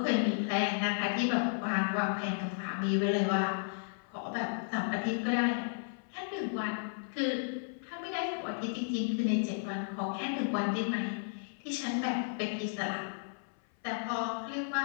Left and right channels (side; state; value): right; silent; 55 dB below the other